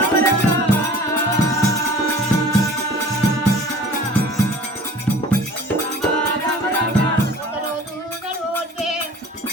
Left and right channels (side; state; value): both; normal; correlation 0.45